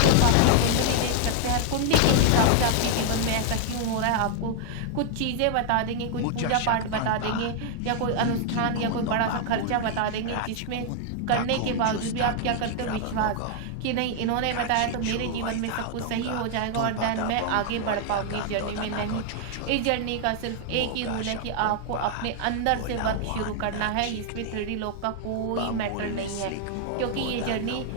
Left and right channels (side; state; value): both; different; correlation 0.00